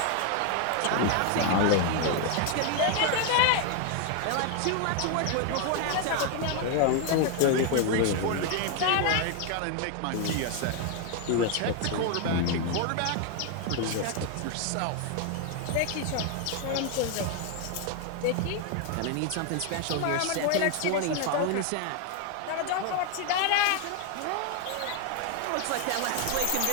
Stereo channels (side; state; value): both; different; correlation 0.00